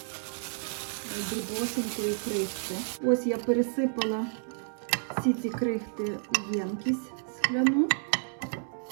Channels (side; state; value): left; silent; 56 dB below the other